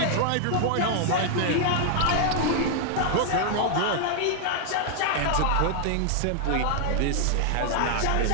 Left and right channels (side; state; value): both; different; correlation 0.00